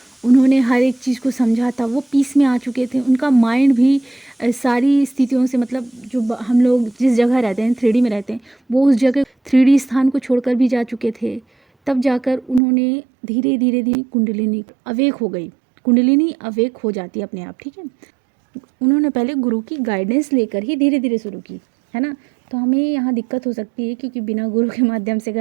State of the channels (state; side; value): drops out; left; at 12.6 s